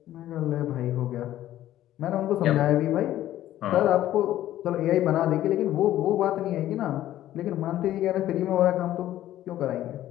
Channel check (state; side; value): quieter; right; 13.3 dB